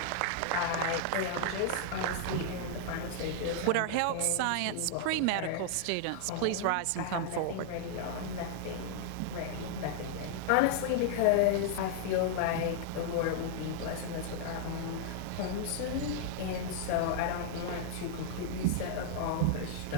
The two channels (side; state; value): both; different; correlation -0.01